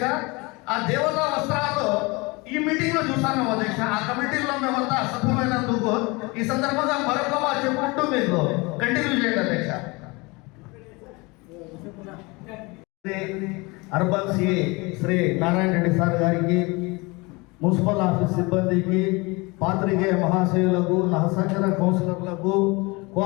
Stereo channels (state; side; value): quieter; right; 25.7 dB